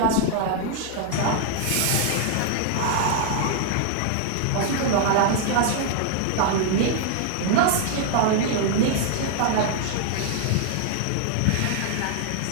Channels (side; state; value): both; different; correlation 0.00